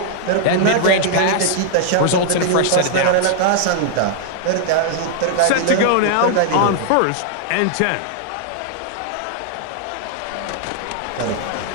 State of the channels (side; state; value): both; different; correlation 0.00